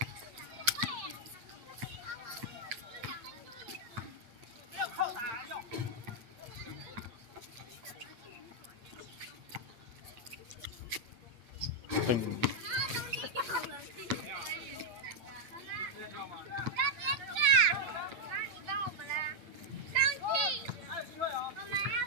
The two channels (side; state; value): left; late; 8.6 ms